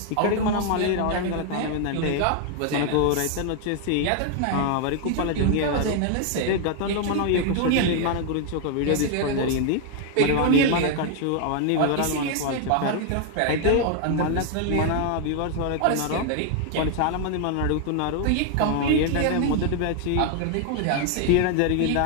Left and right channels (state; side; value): different; both; correlation 0.00